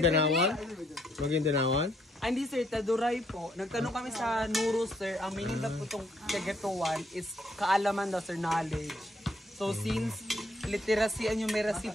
Bangindanawan? Ay, hindi sir, taduray po. Nagtanong kami sa Nuro sir, ang meaning na po itong kagatuan is kaalaman daw sir, knowledge. So since literacy and numeracy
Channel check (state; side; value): normal; both; correlation 0.71